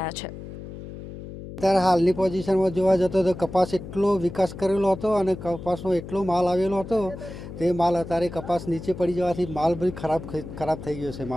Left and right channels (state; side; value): noise; left; hum, 12 dB below the sound